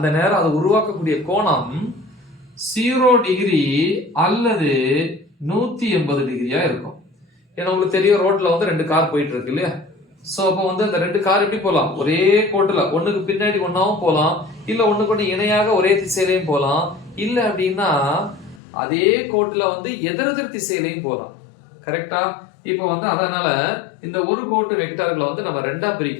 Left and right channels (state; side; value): drops out; right; at 18.6 s